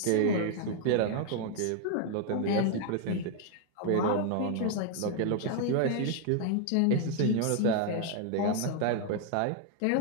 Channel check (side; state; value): both; different; correlation 0.00